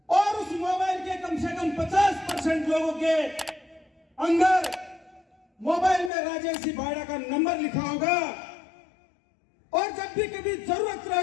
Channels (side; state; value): right; drops out; at 6.1 s